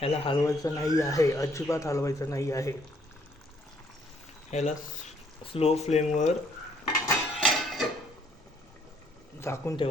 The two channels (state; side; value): normal; both; correlation 0.66